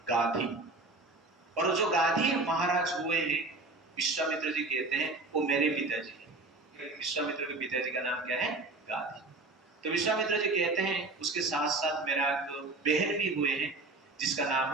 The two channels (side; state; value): left; quieter; 3.1 dB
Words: गाधी। और जो गाधी महाराज हुए हैं, विश्वामित्र जी कहते हैं वो मेरे पिताजी हैं। विश्वामित्र के पिताजी का नाम क्या है? गाधी। तो विश्वामित्र जी कहते हैं उसके साथ साथ मेरा एक बहन भी हुए हैं जिसका नाम